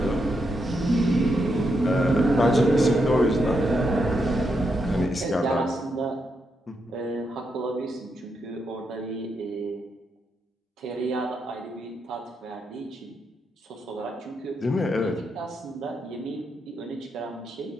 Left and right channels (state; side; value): normal; both; correlation 0.82